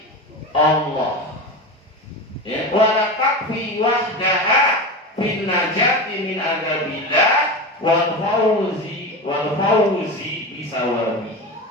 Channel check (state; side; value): normal; both; correlation 0.24